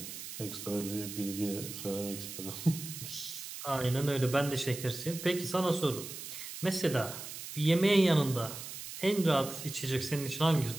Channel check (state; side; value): noise; right; hiss, 10 dB below the sound